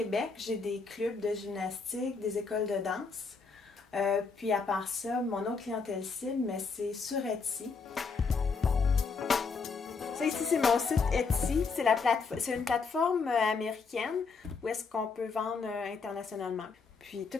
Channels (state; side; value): quieter; right; 4.8 dB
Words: j'ai des clubs de gymnastique, des écoles de danse. Puis à part ça, mon autre clientèle cible, mais c'est sur Etsy. Ça ici, c'est mon site Etsy. C'est une plateforme américaine où est-ce qu'on peut vendre internationalement. Puis